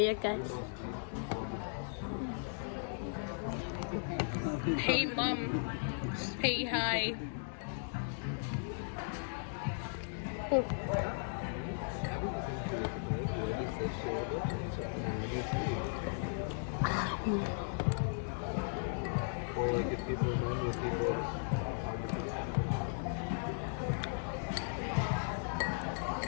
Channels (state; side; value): silent; right; digital silence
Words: guys. Hey mom, say hi. Or like if people remind with people.